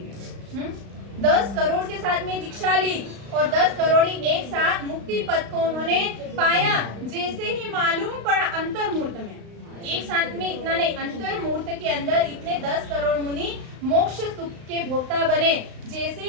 10 करोड़ के साथ में दीक्षा ली और 10 करोड़ एक साथ मुक्ति पद को उन्होंने पाया। जैसे ही मालूम पड़ा अंतर मुहूर्त में, एक साथ में इतना नहीं, अंतर मुहूर्त के अंदर इतने 10 करोड़ मुनि मोक्ष सुख के भोक्ता बने। जैसे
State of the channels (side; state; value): left; late; 35 ms